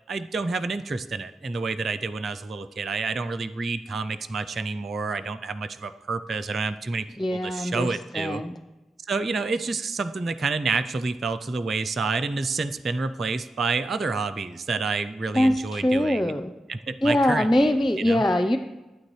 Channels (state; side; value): normal; both; correlation 0.88